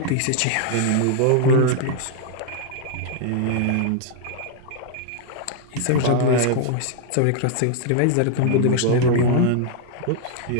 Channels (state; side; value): different; both; correlation 0.00